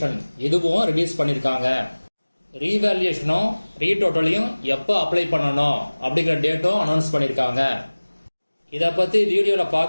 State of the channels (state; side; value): inverted; both; correlation -1.00